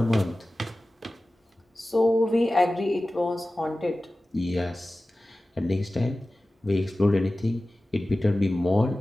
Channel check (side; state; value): both; normal; correlation 0.96